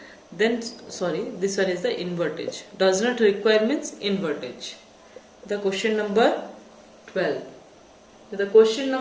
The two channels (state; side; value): identical; both; correlation 1.00